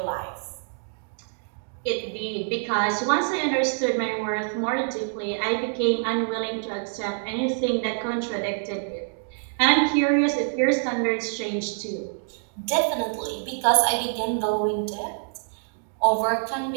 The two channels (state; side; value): silent; left; digital silence